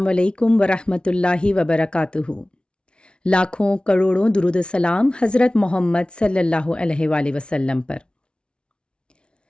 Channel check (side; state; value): right; late; 0.057 ms